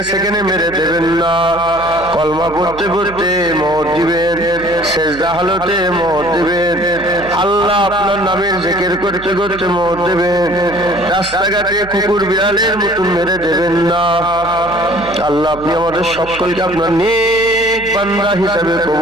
সেখানে মেরে দেবেন না। কলমা পড়তে পড়তে মওত দিবেন, সেজদা হালতে মওত দিবেন। আল্লাহ আপনার নামের জিকির করতে করতে মওত দিবেন। রাস্তাঘাটে কুকুর বিড়ালের মতন মেরে দেবেন না। আল্লাহ আপনি আমাদের সকলকে আপনার নেক বান্দা হিসাবে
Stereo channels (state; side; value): noise; right; hum, 17 dB below the sound